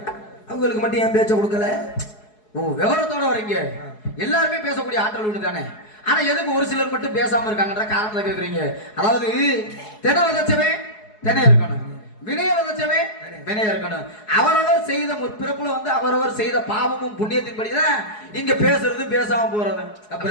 அவங்களுக்கு மட்டும் ஏன் பேச்ச கொடுக்கல? ஓ, விவரத்தோட வரீங்க. எல்லாருமே பேசக்கூடிய ஆற்றல் உண்டு தானே. ஆனா எதுக்கு ஒரு சிலர் மட்டும் பேசாம இருக்காங்கன்ற காரணத்தை கேக்குறீங்க. அதாவது தென விதைச்சவே தென இருக்கணும், வினய விதைச்சவே வினய இருக்கணும். அவரவர் செய்த முற்பிறப்புல வந்து அவரவர் செய்த பாவமும் புண்ணியத்தின்படிதான் இங்க பேசுறது பேசாம போறது. அப்ப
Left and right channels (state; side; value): late; right; 4.7 ms